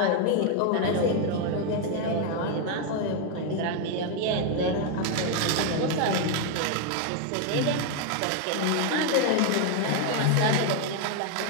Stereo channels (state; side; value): different; both; correlation 0.01